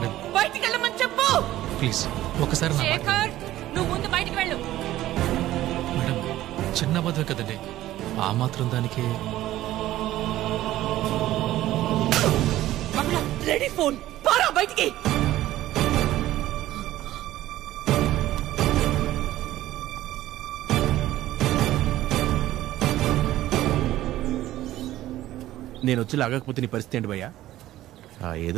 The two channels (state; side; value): quieter; left; 14.7 dB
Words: బయటికి వెళ్ళమని చెప్పు. ప్లీజ్ ఒకసారి నా మాట. శేఖర్, నువ్వు ముందు బయటికి వెళ్ళు. మేడం చిన్న అబద్ధం కదండి, ఆ మాత్రం దానికి. రెడీ ఫోన్ పారా బయటికి. నేను వచ్చి లాగకపోతే నీ పరిస్థితి ఏంటి భయ్యా? ఏదో